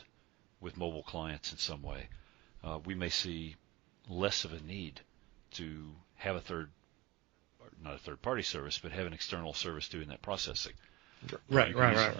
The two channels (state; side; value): quieter; left; 21.6 dB